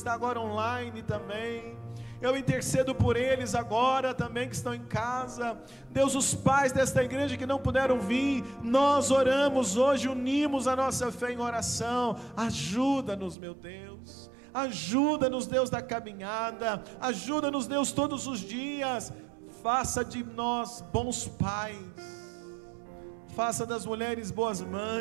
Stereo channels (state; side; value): drops out; left; at 13.4 s